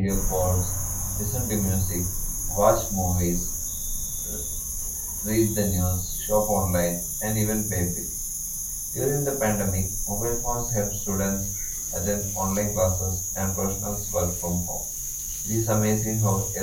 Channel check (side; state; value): both; identical; correlation 1.00